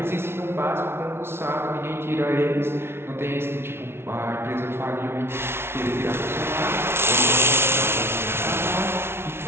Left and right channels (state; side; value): late; left; 0.12 ms